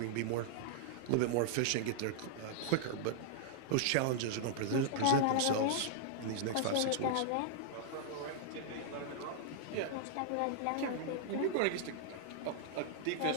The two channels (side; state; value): both; different; correlation -0.01